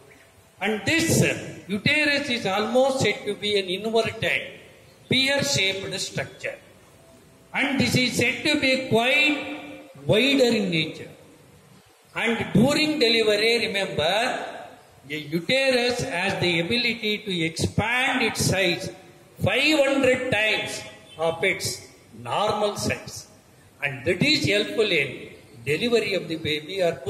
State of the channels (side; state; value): both; identical; correlation 1.00